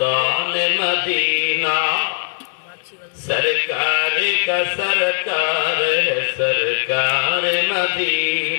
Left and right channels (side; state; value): right; silent; 66 dB below the other